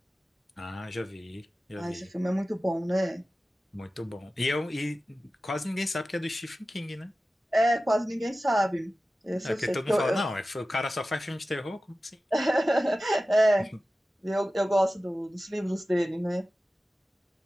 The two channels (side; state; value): both; normal; correlation 0.95